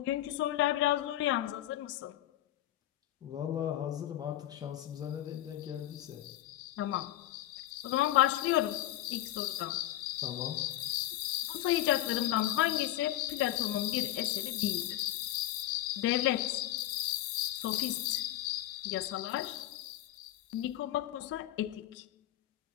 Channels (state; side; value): quieter; right; 14.1 dB